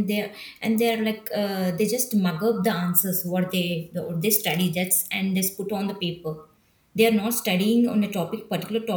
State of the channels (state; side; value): identical; both; correlation 1.00